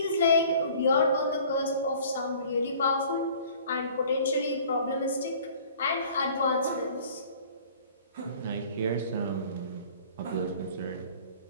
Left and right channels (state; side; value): inverted; both; correlation -0.50